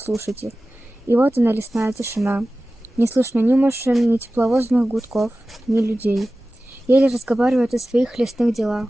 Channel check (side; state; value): both; normal; correlation 0.96